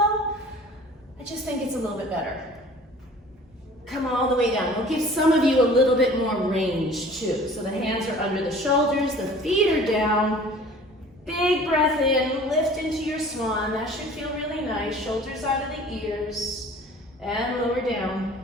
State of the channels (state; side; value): normal; both; correlation 0.47